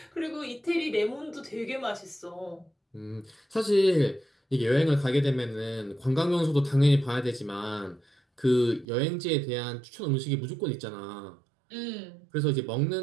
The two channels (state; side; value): drops out; left; at 8.8 s